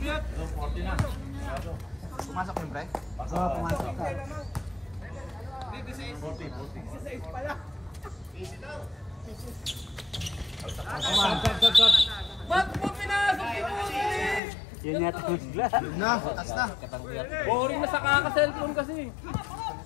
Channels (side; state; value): right; drops out; at 14.4 s